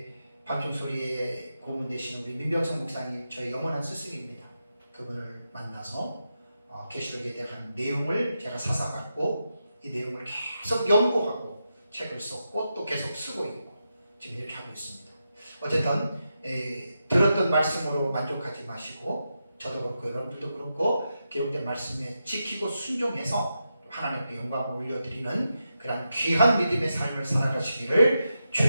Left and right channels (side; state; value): both; inverted; correlation -0.87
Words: 밤중소리의 고문 되시는 우리 민병성 목사님, 저의 영원한 스승입니다. 그분을 만나서 계시록에 대한 내용을 제가 사사받고 이 내용을 계속 연구하고 책을 썼고 또 계속 쓰고 있고 지금 이렇게 하고 있습니다. 어쨌든 들었던 말씀으로 만족하지 마시고 저도 그렇고 여러분들도 그렇고 기록된 말씀에 지키고 순종해서 하나님 앞에 영광을 올려드리는 그런 귀한 믿음의 삶을 살아가시기를